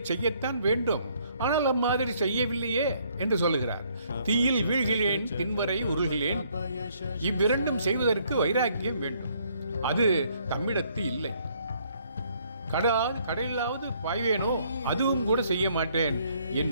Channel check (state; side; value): inverted; both; correlation -0.66